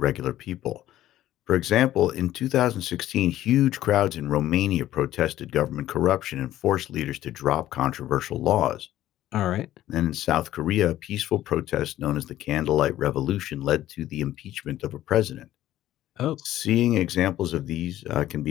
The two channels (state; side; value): quieter; right; 13.6 dB